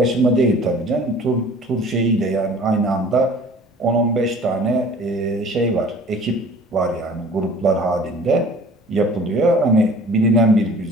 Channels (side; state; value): both; normal; correlation 0.48